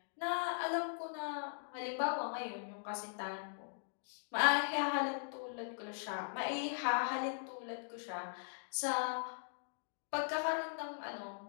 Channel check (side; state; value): right; silent; digital silence